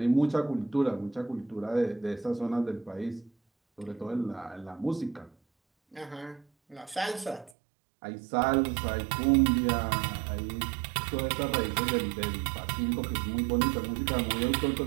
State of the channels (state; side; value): drops out; left; at 7.5 s